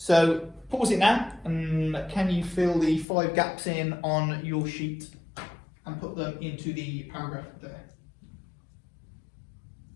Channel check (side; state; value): right; drops out; at 3.1 s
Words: pause it now, and can you fill the 5 gaps in on your sheet and put them into the paragraph there?